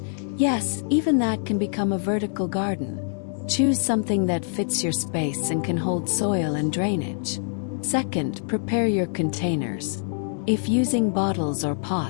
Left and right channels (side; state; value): right; silent; digital silence